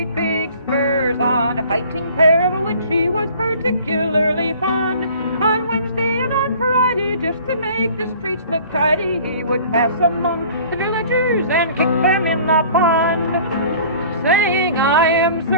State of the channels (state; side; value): inverted; both; correlation -0.49